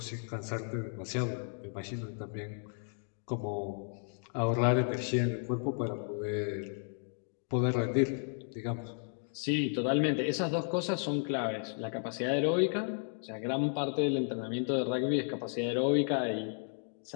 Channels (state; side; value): silent; right; 55 dB below the other